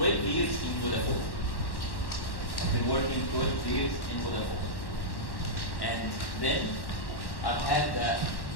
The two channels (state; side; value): late; right; 1.1 ms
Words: years in Vodafone. I've been working 12 years in Vodafone. And then I've had the